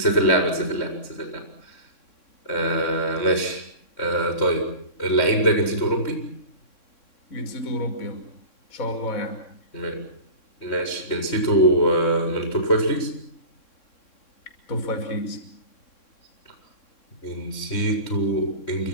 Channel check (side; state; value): right; late; 3.6 ms